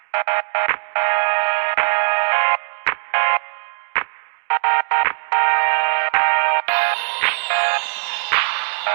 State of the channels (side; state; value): left; silent; digital silence